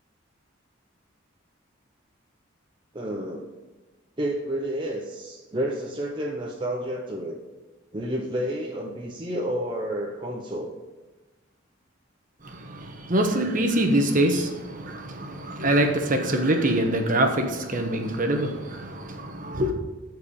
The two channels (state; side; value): normal; both; correlation 0.38